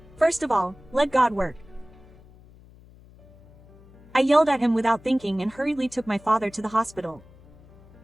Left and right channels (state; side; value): noise; left; hum, 24 dB below the sound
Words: First of all, let God work. I yelled at him without thinking and hurriedly took my father to the hospital.